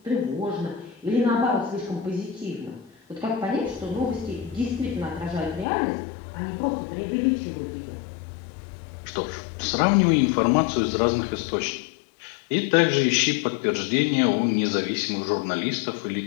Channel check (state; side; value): drops out; right; at 5.7 s